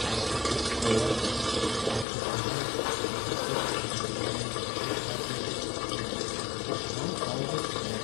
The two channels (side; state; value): right; drops out; at 2.1 s